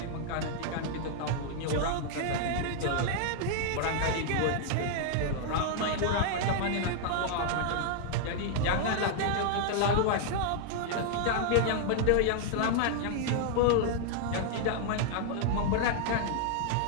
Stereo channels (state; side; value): different; both; correlation 0.00